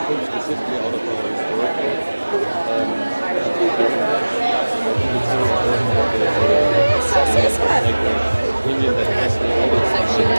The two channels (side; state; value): both; inverted; correlation -1.00